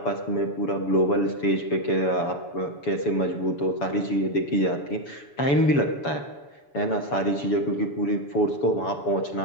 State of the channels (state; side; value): late; right; 7.0 ms